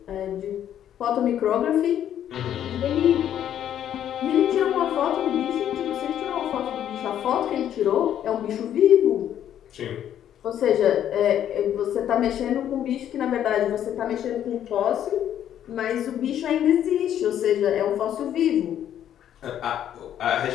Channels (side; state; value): right; quieter; 10.5 dB